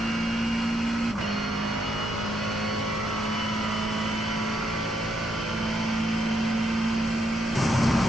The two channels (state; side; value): normal; both; correlation 0.76